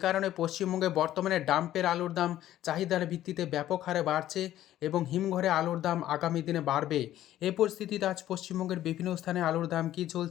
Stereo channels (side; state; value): right; quieter; 13.1 dB